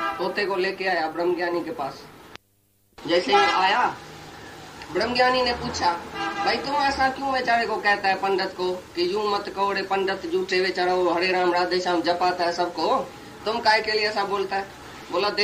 तोते को लेके आया ब्रह्मज्ञानी के पास। जैसे ही आया, ब्रह्मज्ञानी ने पूछा, भाई तुम ऐसा क्यों बेचारे को कहता है पंडित को कि यूं मत कहो रे पंडित, झूठे बेचारा वो हरे राम राधे श्याम जपाता है सबको, तुम काय के लिए ऐसा बोलता है? बोला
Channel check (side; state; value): both; identical; correlation 1.00